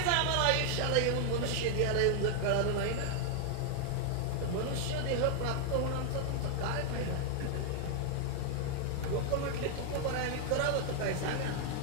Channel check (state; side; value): different; both; correlation 0.00